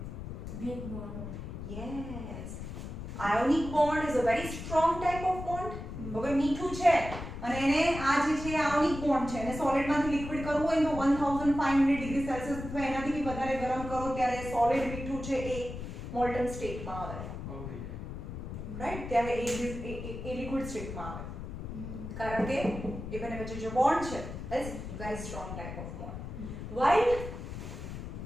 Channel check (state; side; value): noise; left; rumble, 8 dB below the sound